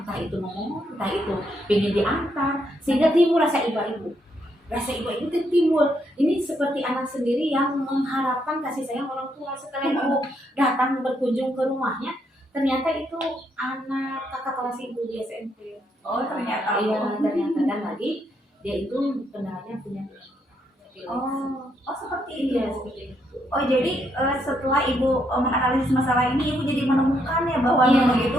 itu ngomong, entah itu pengen diantar, sehingga timbul rasa ibu. Rasa ibu itu timbul. Ini seperti anak sendiri yang mengharapkan kasih sayang orang tua. Setelah ibu datang berkunjung ke rumahnya, ternyata itu anak kakak kelas ibu di SMP. Oh, ternyata. Iya, ternyata. Dan lagi dia itu kendalanya punya. Oh, seperti itu. Iya, seperti itu. Oh, jadi setelah Ibu menganalisis masalah ini, Ibu jadi menemukan ya bahwa Nunung itu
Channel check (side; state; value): both; normal; correlation 0.76